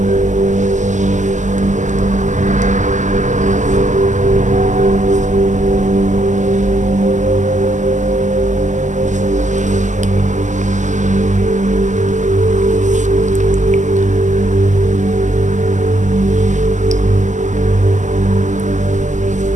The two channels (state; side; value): late; left; 0.35 ms